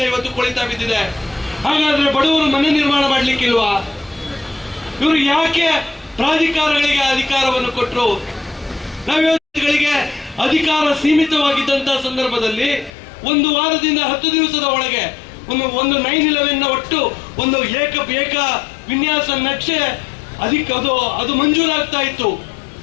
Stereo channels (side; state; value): right; drops out; at 12.9 s